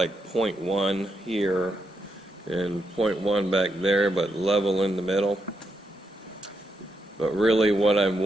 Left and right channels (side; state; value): both; normal; correlation 0.81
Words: 0.1 here and 0.1 back there, but level in the middle. But really what I'm